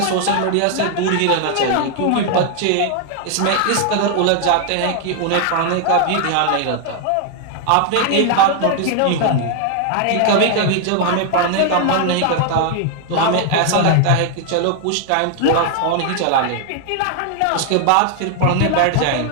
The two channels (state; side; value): different; both; correlation 0.00